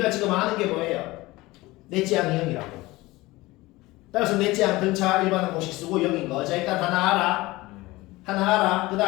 지금 아는 게 뭐예요? 넷째 항이 0이라고. 따라서 넷째 항 등차 일반항 공식 쓰고 0인 거. 자, 일단 하나 알아. 하나 알아. 그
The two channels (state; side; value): quieter; right; 20.1 dB